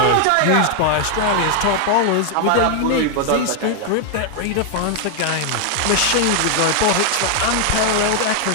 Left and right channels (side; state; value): both; different; correlation 0.00